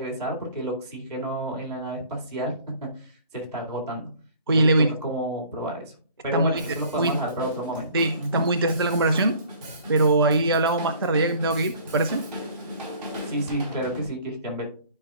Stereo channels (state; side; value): inverted; both; correlation -0.51